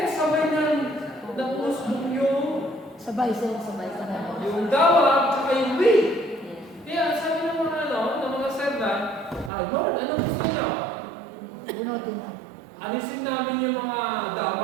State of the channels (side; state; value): left; drops out; at 9.5 s